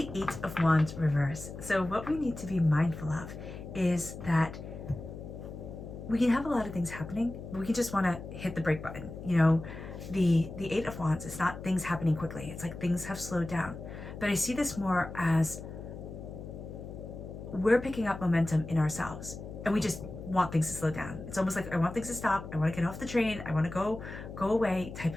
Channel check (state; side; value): noise; left; hum, 11 dB below the sound